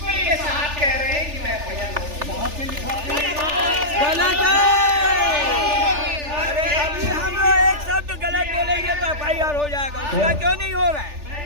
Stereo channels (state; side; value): late; left; 3.4 ms